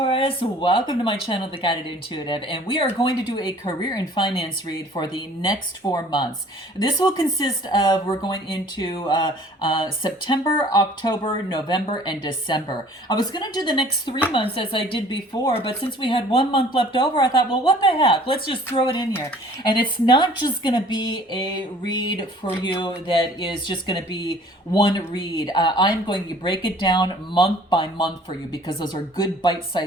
welcome to my channel, The Guided Intuitive, and we are going to do a career and finance read for the next 4 months. This will consist of, we're going into September, October, November, and December. I was going to do the next 3 months as I did before, but since we had 1 month left over, I thought, well, what the heck, let's just throw it in here. And it's not just going to be a read for you that is just going to be one read. I'm going to break it down month by month for you because those are good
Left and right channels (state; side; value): normal; both; correlation 0.52